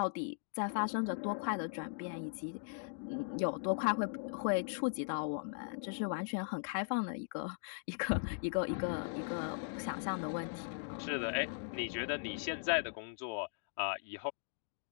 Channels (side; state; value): right; silent; digital silence